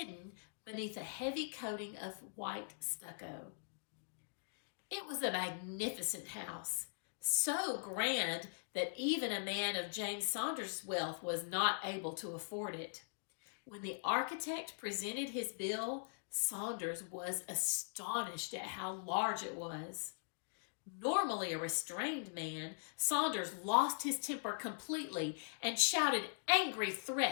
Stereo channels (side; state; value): right; silent; digital silence